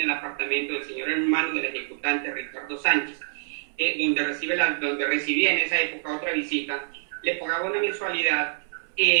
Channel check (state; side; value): silent; left; digital silence